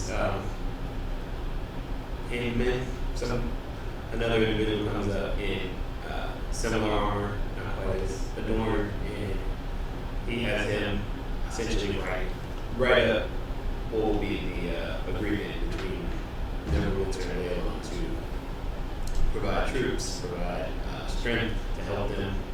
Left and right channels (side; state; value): both; identical; correlation 1.00